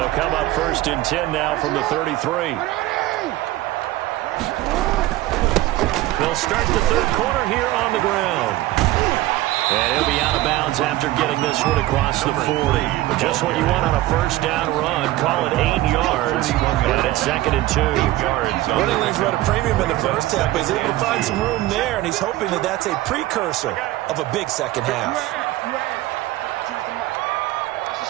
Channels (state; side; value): quieter; left; 16.5 dB